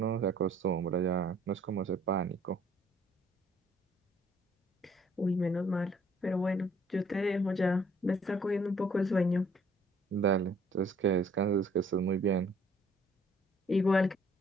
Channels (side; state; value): both; normal; correlation 0.61